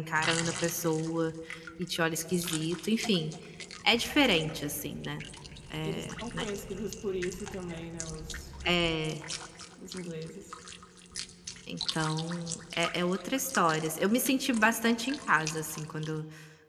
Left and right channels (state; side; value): identical; both; correlation 1.00